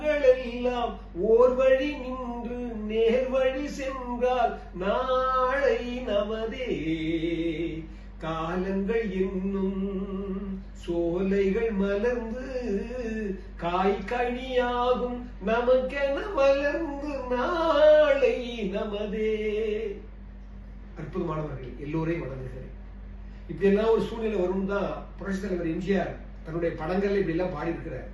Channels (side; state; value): both; identical; correlation 1.00